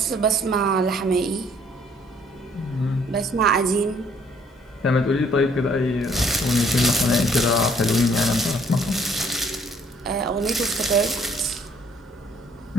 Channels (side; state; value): both; normal; correlation 0.62